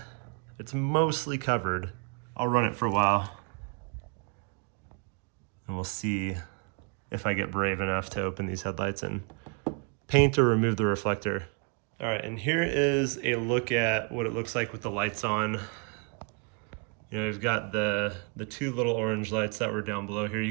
it's mostly covered. I'll run it for a while and we'll see if I get brave enough to open these headlights and paint or remove the reflector. All right, and here is a look at what it looks like with the lights on. You know, we've got the two little orange lights that were down below here. You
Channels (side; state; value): left; quieter; 35.5 dB